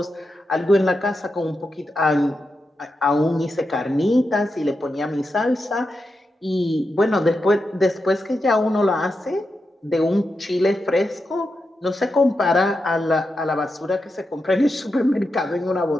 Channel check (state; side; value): normal; both; correlation 0.88